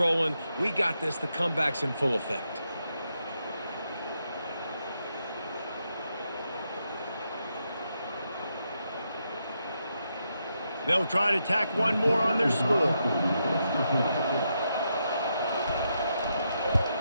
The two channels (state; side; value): inverted; both; correlation -0.82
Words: We got this. The comeback's in full effect. They'll try to tack one more on their score.